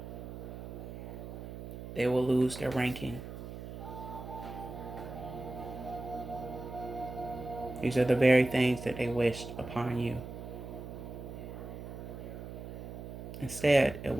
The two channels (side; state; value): right; noise; hum, 10 dB below the sound